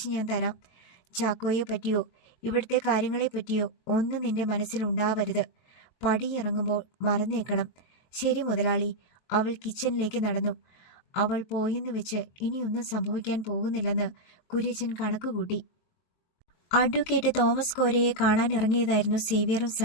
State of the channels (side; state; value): right; late; 23 ms